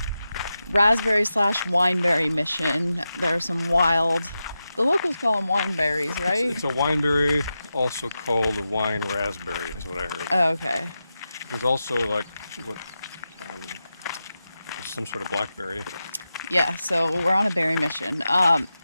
raspberry / wineberry mission. There are some wild, the locals call them wineberries, right? It's a wineberry, also called a wine raspberry, is what I heard. Oh, okay. There's also like what, some sort of blackberry. Yeah, so we're on a berry mission.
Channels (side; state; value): both; inverted; correlation -0.90